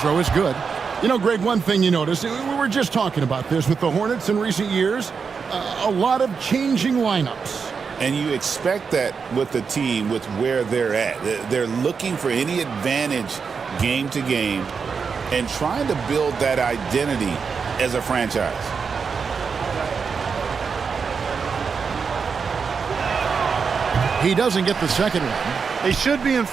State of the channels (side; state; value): left; quieter; 5.7 dB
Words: is good. You know, Greg, one thing you notice, we were just talking about this with the Hornets in recent years, a lot of changing lineups. And you expect that with the team, with where they're at. They're looking for any advantage game to game and trying to build that identity as a franchise. He doesn't get the second one. They should be in